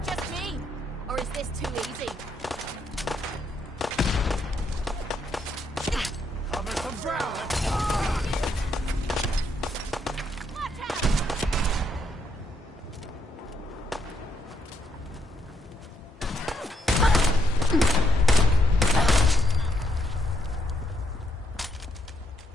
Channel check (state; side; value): normal; both; correlation 0.76